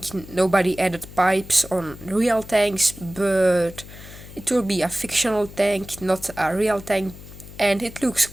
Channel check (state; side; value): noise; left; hum, 16 dB below the sound